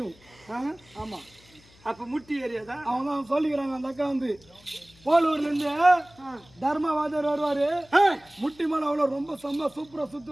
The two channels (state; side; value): noise; left; hum, 27 dB below the sound